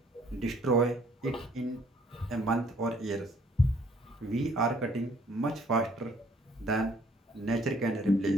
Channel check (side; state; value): both; normal; correlation 0.62